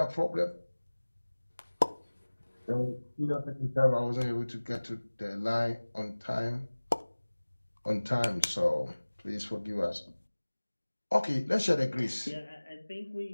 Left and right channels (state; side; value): inverted; both; correlation -1.00